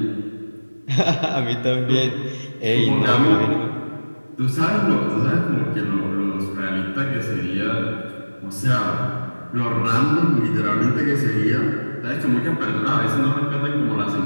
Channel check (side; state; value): both; inverted; correlation -1.00